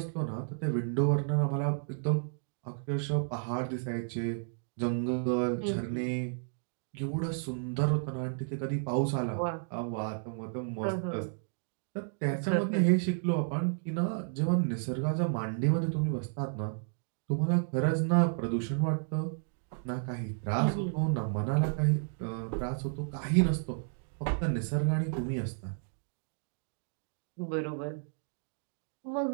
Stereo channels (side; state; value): left; silent; digital silence